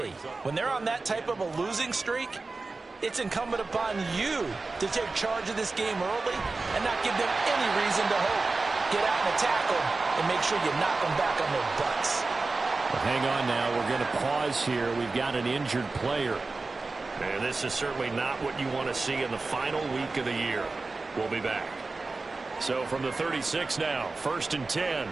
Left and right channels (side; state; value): left; quieter; 3.7 dB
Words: When they're on that type of a losing streak, it's incumbent upon you to take charge of this game early and not give them any reason to hope. Get out and attack them and make sure you knock them back on their butts. Well, hang on now. We're going to pause here. We've got an injured player. And this is certainly not what you want to see in the final week of the year. We'll be back. So from the 36 now, 1st and 10.